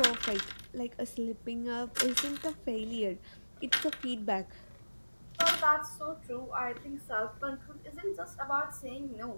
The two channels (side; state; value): both; inverted; correlation -1.00